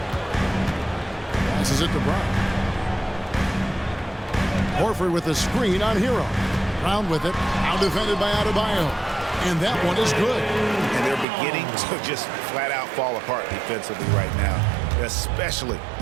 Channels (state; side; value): drops out; left; at 11.2 s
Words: Passes it to Brown. Horford with the screen on Hero. Brown with it. Now defended by Adebayo. And that one is good. And they're beginning to just flat out fall apart defensively right now, especially